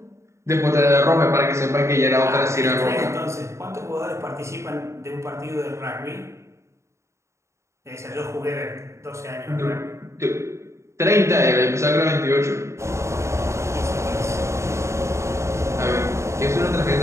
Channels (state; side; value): late; left; 0.14 ms